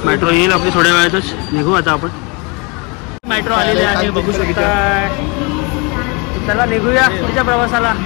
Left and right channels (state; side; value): quieter; right; 30.2 dB